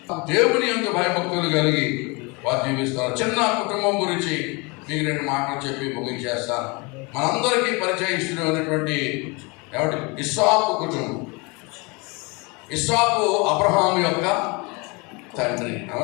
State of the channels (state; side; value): quieter; right; 28.3 dB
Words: దేవుని యందు భయభక్తులు కలిగి వారు జీవిస్తారు. చిన్న కుటుంబం గురించి మీకు 2 మాటలు చెప్పి ముగించేస్తాను. మనందరికీ పరిచయిస్తున్నటువంటి ఎవరి ఇస్సాకు కుటుంబం. ఇస్సాకు అబ్రహాము యొక్క తండ్రి,